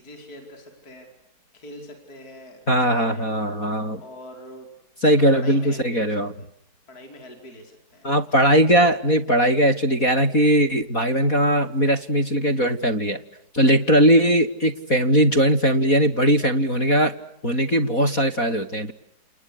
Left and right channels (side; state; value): right; late; 4.1 ms